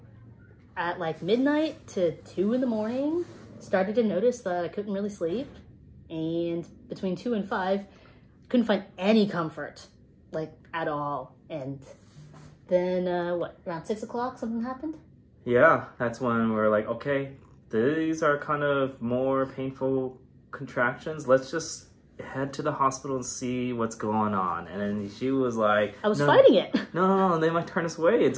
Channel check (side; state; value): both; identical; correlation 1.00